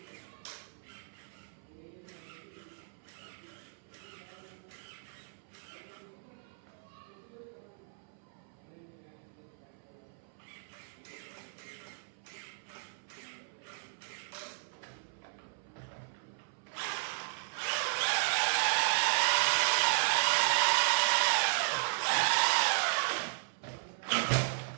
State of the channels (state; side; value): silent; left; 54 dB below the other